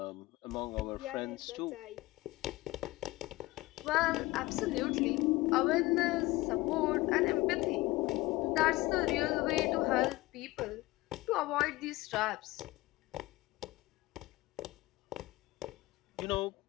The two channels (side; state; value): right; quieter; 20.0 dB